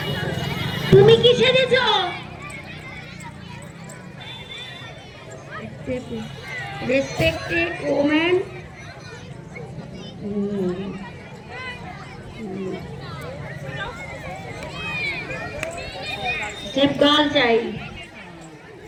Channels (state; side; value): identical; both; correlation 1.00